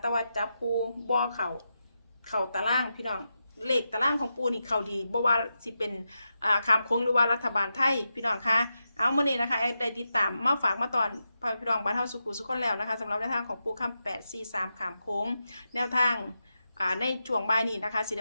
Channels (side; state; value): both; inverted; correlation -0.88